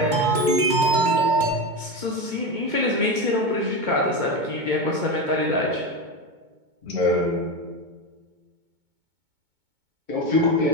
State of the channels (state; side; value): late; left; 2.2 ms